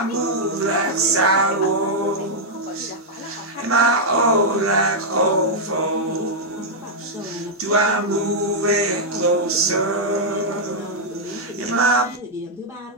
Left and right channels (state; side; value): normal; both; correlation -0.05